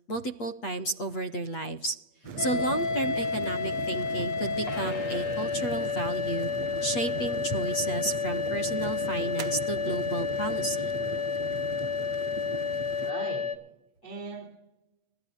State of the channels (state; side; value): late; right; 8.3 ms